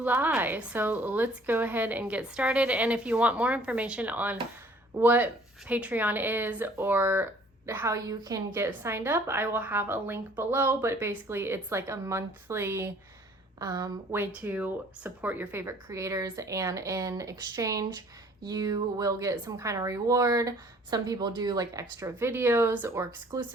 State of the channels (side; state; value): both; normal; correlation 0.55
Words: So let's go ahead and get started. And if you want more information on what Patreon is or how you can get signed up, I will have a link below, but basically it's like a monthly way to support your favorite creators, and in exchange you will get some kind of reward. Some people do like extra videos or